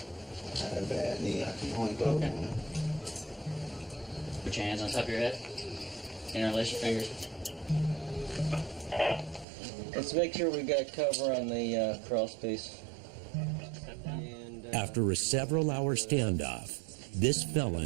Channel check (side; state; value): left; drops out; at 9.5 s